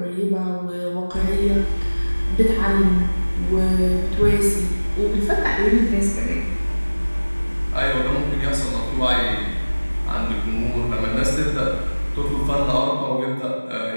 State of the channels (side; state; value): both; inverted; correlation -1.00